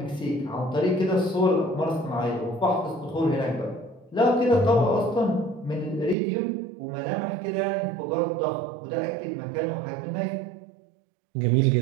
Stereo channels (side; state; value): left; drops out; at 6.2 s